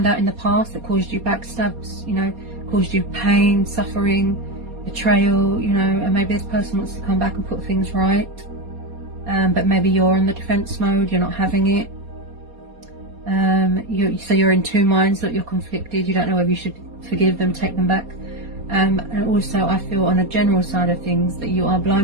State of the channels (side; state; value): left; late; 4.2 ms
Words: out in the past that caused you backstabs, you know, caused you pain, suffering, betrayal, you know, and maybe this person wants to come back and put things right. But maybe you're in the defense mode, you're not having it. So you're in two minds, that you're conflicted, you don't know whether you should forgive them, take them back. And also I feel on a general side of things that you are